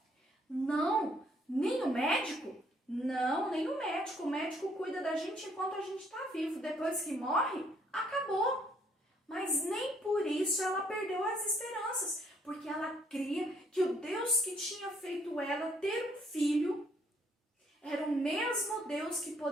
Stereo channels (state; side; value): normal; both; correlation 0.66